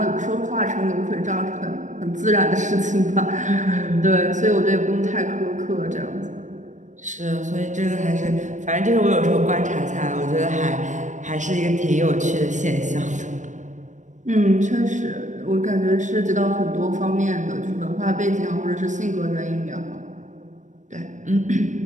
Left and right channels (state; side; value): late; left; 0.35 ms